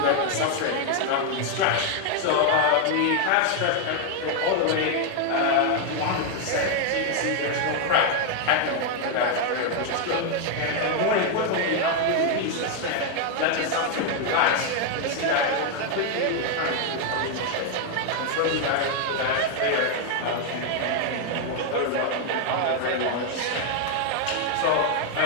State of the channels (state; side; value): different; both; correlation 0.00